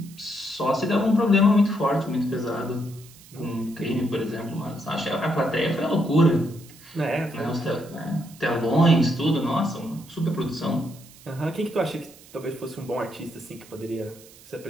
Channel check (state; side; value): noise; right; hiss, 22 dB below the sound